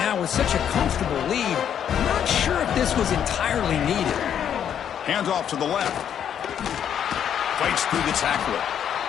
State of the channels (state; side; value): quieter; right; 9.0 dB